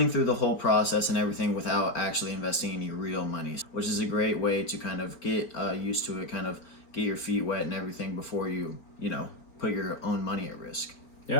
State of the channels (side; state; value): right; late; 4.4 ms